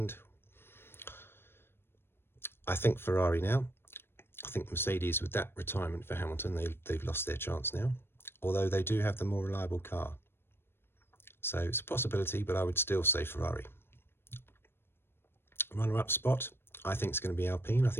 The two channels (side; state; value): right; late; 0.11 ms